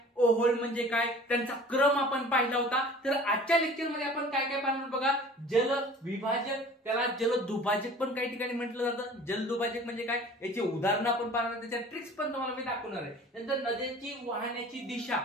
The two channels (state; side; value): normal; both; correlation 0.45